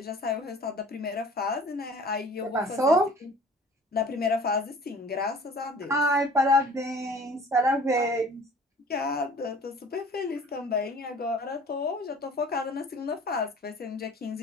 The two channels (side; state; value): both; normal; correlation 0.47